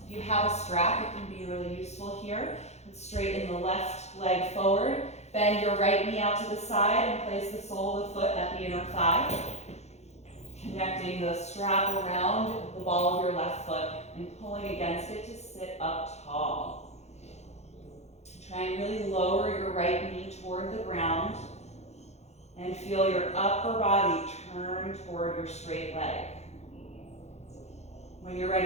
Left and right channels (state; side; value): late; right; 0.32 ms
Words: If you have a strap, it can be really useful here. Straighten the left leg forward. Bend your right knee out to the side and place the sole of the foot at the inner thigh. Connecting the strap around the ball of your left foot and pulling against it to sit up tall. Try and really lower your right knee toward the ground and feel your upper body turn toward your straight leg. When you're